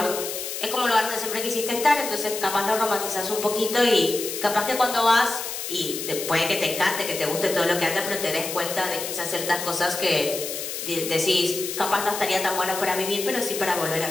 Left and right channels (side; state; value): left; noise; hiss, 6 dB below the sound